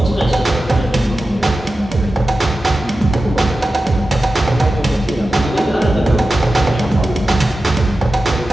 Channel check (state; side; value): normal; both; correlation 0.93